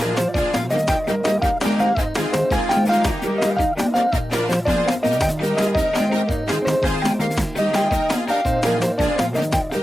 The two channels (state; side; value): normal; both; correlation 0.93